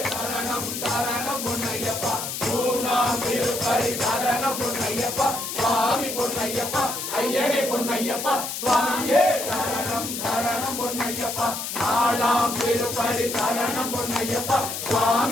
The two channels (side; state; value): left; noise; hiss, 5 dB below the sound